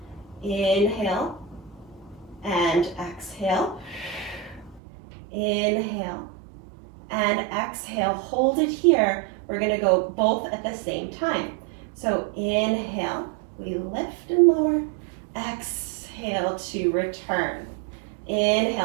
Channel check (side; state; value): left; drops out; at 4.8 s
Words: Inhale. And exhale, inhale, and exhale. Hold it here. We're going to go both at the same time. So inhale, we lift and lower. Exhale to return.